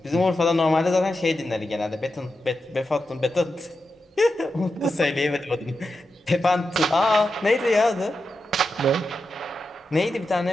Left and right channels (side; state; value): both; normal; correlation 0.89